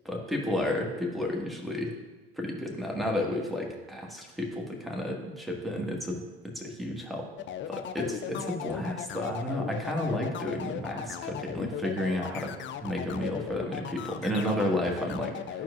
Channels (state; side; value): normal; both; correlation 0.57